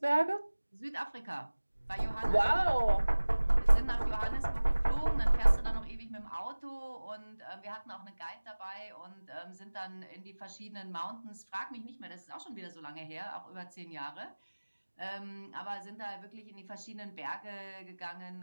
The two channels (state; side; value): inverted; both; correlation -1.00